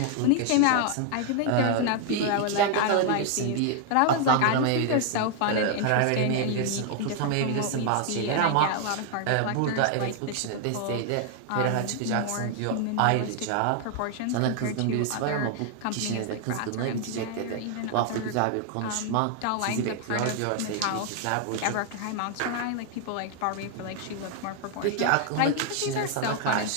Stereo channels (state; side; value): different; both; correlation 0.00